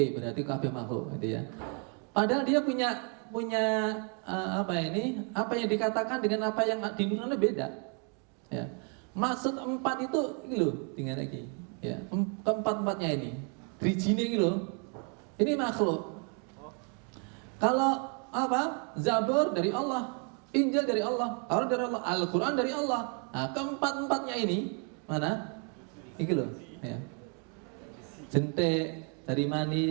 berarti kabeh makhluk, gitu ya. Padahal dia punya apa yang dikatakan dengan apa yang dinurunkan beda. Ya, maksud empat itu ini loh, dengan lagi. Ya, keempat-empatnya ini, drijine ini loh. Ini makhluk. Kalau apa? Zabur dari Allah, Injil dari Allah, Taurat dari Allah, Al-Quran dari Allah. Nah, keempat-empatnya ini mana? Ini loh. Ya. Jentik, dari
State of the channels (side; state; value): left; quieter; 38.8 dB